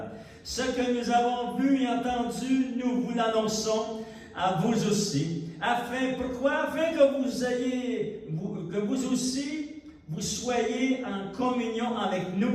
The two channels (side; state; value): both; identical; correlation 1.00